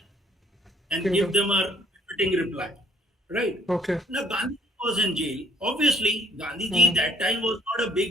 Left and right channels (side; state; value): both; normal; correlation 0.62